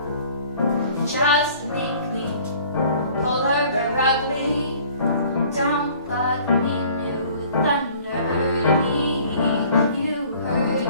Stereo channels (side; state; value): both; inverted; correlation -0.53